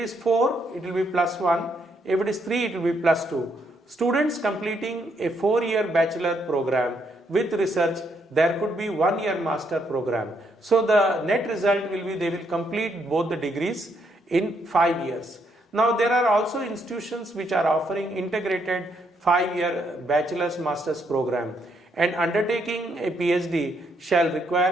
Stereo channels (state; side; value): normal; both; correlation 0.75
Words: 4, it will be +1. If it is 3, it will be +2. Students completing a 4-year bachelor program with research, there could be 1-year master program. So the net result will be they will complete both the degrees in 5 years. Now there are also institutions which are offering integrated 5-year bachelor's master's program, and undertaking a PhD shall